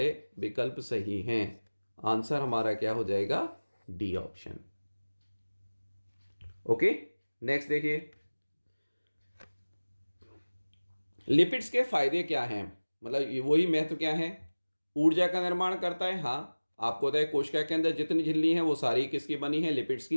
विकल्प सही हैं। आंसर हमारा क्या हो जाएगा? D option. ओके, नेक्स्ट देखिए, लिपिड्स के फायदे क्या हैं, मतलब वही महत्व क्या है? ऊर्जा का निर्माण करता है, हाँ। आपको पता है कोशिका के अंदर जितनी झिल्ली हैं वो सारी किसकी बनी है? लिपिड्स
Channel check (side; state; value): both; inverted; correlation -1.00